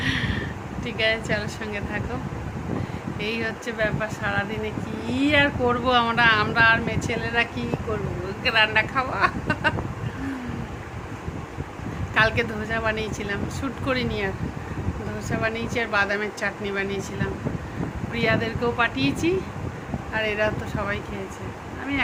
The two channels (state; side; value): identical; both; correlation 1.00